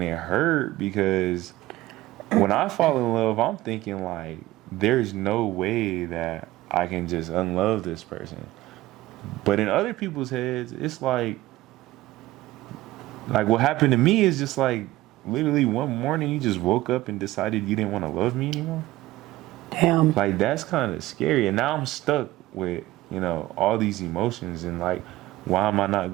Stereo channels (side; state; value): left; quieter; 17.0 dB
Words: it hurt because when I fall in love, I'm thinking like, there's no way that I can just unlove this person. But in other people's heads, it's like what happened to me is just like, literally one morning you just woke up and decided you didn't want to love me anymore. damn. Like that's kind of scary. And now I'm stuck with, all these emotions and like, why am I not